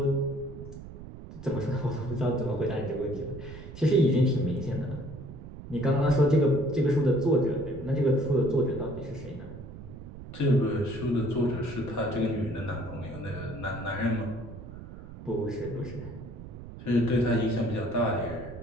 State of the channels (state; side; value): noise; right; rumble, 13 dB below the sound